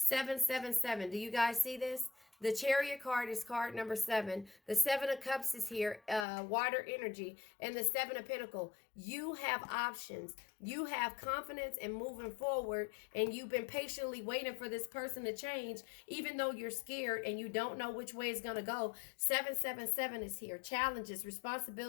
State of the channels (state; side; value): drops out; right; at 6.2 s